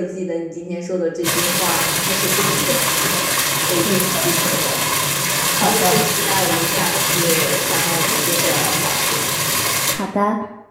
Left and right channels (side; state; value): both; identical; correlation 1.00